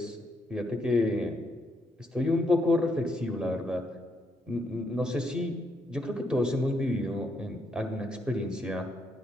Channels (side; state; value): both; normal; correlation 0.76